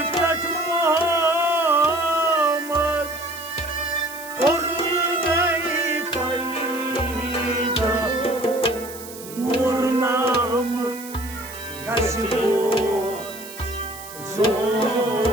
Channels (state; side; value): noise; right; hiss, 15 dB below the sound